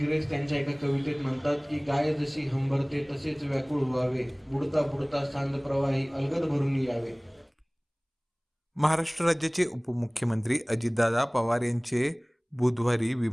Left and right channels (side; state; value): both; identical; correlation 1.00